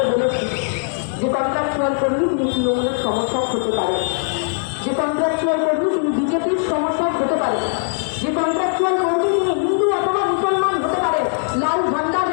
বলেছি যে কন্ট্রাকচুয়াল কর্মী তিনি তৃণমূলের সমর্থক হতে পারেন, যে কন্ট্রাকচুয়াল কর্মী তিনি বিজেপির সমর্থক হতে পারেন, যে কন্ট্রাকচুয়াল কর্মী তিনি হিন্দু অথবা মুসলমান হতে পারেন। লাল ঝান্ডা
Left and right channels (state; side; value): silent; right; digital silence